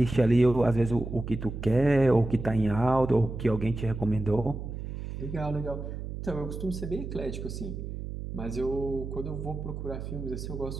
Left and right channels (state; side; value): noise; right; hum, 7 dB below the sound